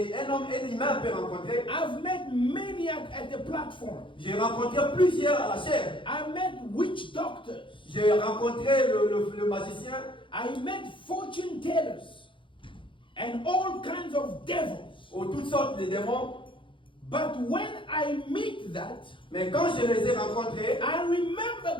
qu'un homme, un humain peut rencontrer. I've met many at the platform. J'ai rencontré plusieurs à la chair. I met witch doctors. J'ai rencontré le magicien. I met fortune tellers and all kinds of devils. Ou toutes sortes de démons. But when I meet that, Mais quand je les ai rencontrés, I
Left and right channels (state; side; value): late; right; 0.25 ms